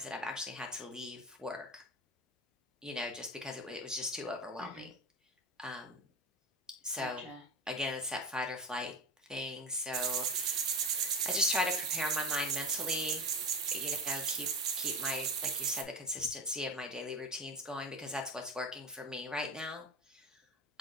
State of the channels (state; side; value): normal; both; correlation 0.25